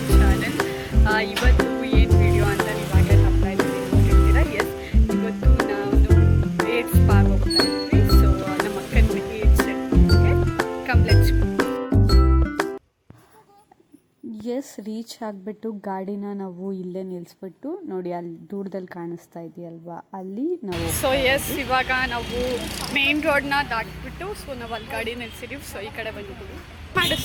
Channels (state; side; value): identical; both; correlation 1.00